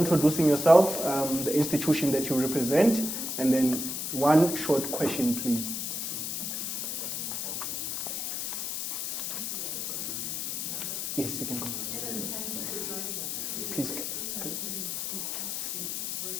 yourself, the institution that you represent, and then 1 short question, please. Yes, you can go. Please.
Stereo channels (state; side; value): noise; left; hiss, 3 dB below the sound